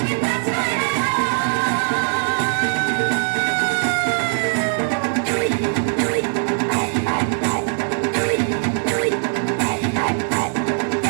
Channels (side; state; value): left; silent; digital silence